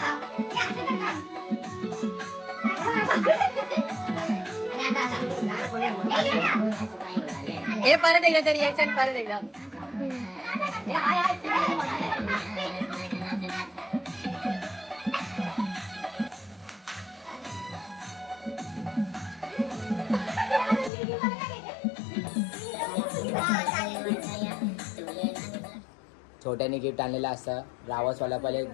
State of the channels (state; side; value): drops out; right; at 20.9 s